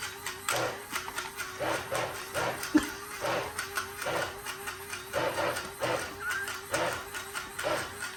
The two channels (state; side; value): identical; both; correlation 1.00